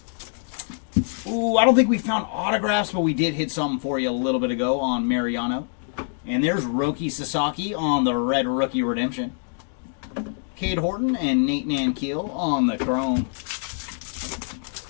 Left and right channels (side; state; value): right; silent; digital silence